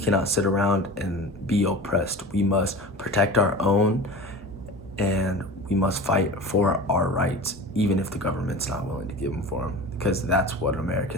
sit around and be oppressed. We must protect our own and we must fight for our rights, even if the government's not willing to give them for them, because that's what an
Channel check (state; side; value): normal; both; correlation 0.34